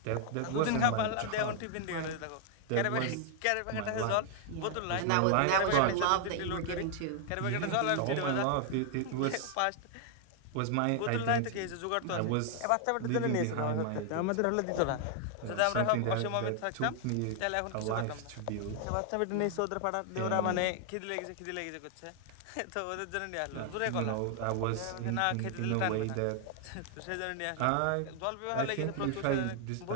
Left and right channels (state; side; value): different; both; correlation 0.00